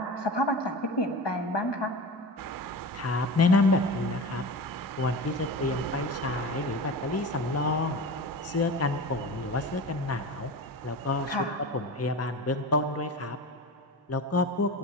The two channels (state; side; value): normal; both; correlation 0.31